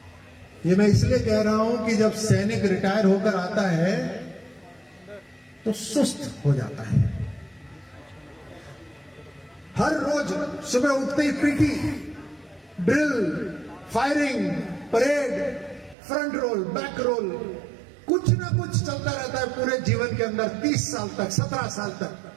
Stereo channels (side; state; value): left; drops out; at 16.0 s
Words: ये मैं इसलिए कह रहा हूं कि जब सैनिक रिटायर होकर आता है तो सुस्त हो जाता है। हर रोज सुबह उठते ही PT, drill, firing, parade, front roll, back roll, कुछ ना कुछ चलता रहता है पूरे जीवन के अंदर 30 साल तक, 17 साल तक,